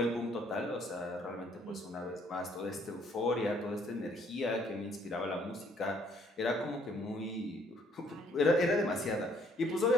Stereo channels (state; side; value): normal; both; correlation 0.64